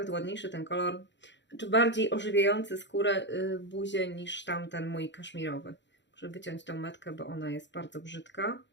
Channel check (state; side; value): late; right; 0.52 ms